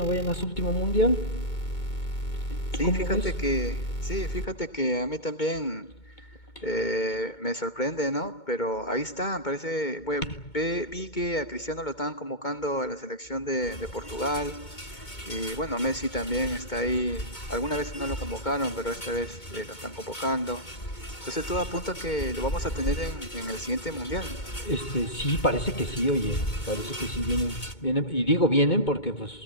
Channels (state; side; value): late; right; 2.2 ms